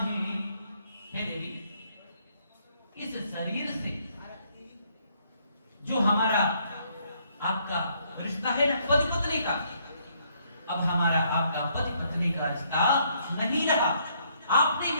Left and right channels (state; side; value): inverted; both; correlation -0.69